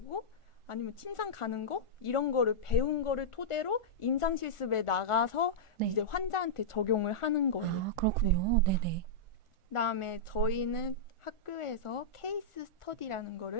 아니면 침상 가는 거 이런 거를 배운 거를 토대로 임상 실습에 나가서 네. 이제 환자한테 적용을 하는 거예요. 아, 그렇군요. 네네. 그다음에 저희는 학교에서 케이스 스터디라는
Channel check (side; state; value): right; late; 1.4 ms